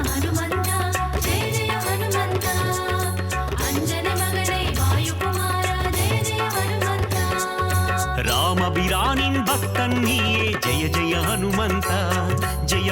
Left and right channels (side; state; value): both; identical; correlation 1.00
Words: ராமபிரானின் பக்தன் நீயே ஜெய ஜெய ஹனுமந்தா